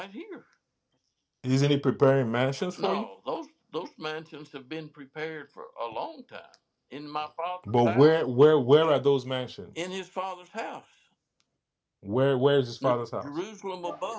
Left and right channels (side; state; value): both; identical; correlation 1.00